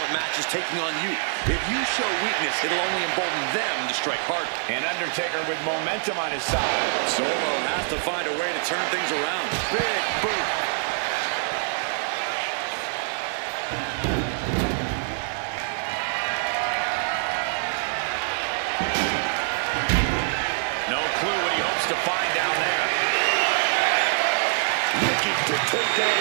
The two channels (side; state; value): left; silent; 62 dB below the other